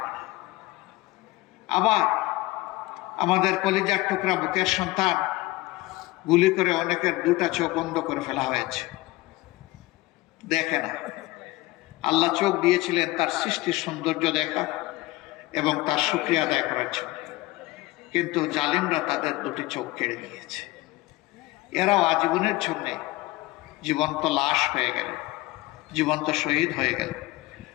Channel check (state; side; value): quieter; right; 19.8 dB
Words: না। আবার আমাদের কলিজার টুকরা বুকের সন্তান, গুলি করে অনেকের 2টা চোখ বন্ধ করে ফেলা হয়েছে, দেখে না। আল্লাহ চোখ দিয়েছিলেন তার সৃষ্টির সৌন্দর্য দেখা এবং তার শুকরিয়া আদায় করার জন্য, কিন্তু জালিমরা তাদের 2টি চোখ কেড়ে নিয়েছে। এরাও আজীবনের জন্য জীবন্ত লাশ হয়ে গেল, জীবন্ত শহীদ হয়ে গেল।